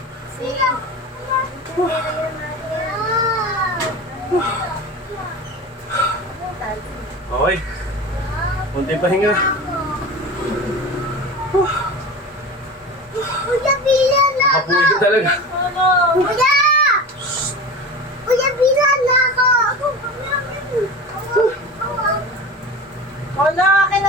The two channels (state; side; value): normal; both; correlation 0.31